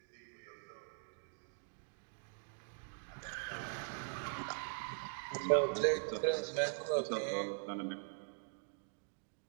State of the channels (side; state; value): left; silent; digital silence